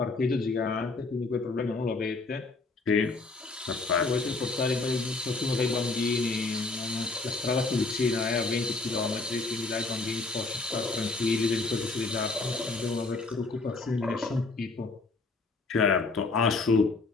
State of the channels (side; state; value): right; quieter; 3.6 dB